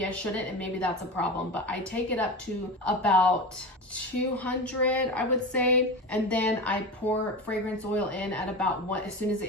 I shouldn't, and maybe that's a problem, but I take it up to about 200, I would say, and then I pour fragrance oil in at about as soon as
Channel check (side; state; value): both; normal; correlation 0.25